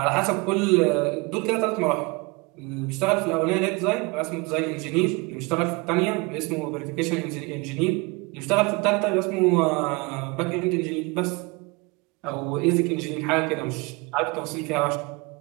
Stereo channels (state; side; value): quieter; left; 27.0 dB